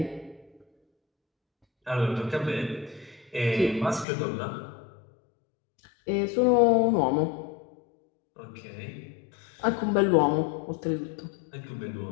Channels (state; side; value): drops out; right; at 4.0 s